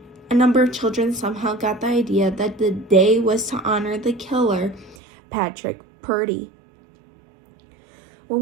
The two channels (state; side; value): drops out; left; at 5.0 s